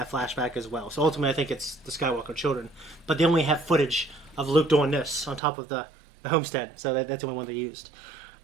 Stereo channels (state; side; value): drops out; left; at 5.4 s